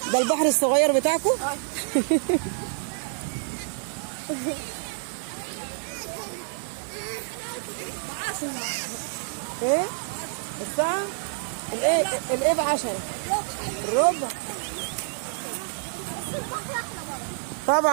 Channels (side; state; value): left; silent; digital silence